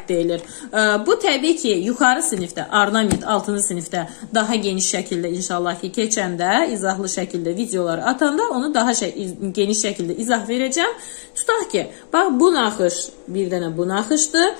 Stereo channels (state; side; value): silent; right; digital silence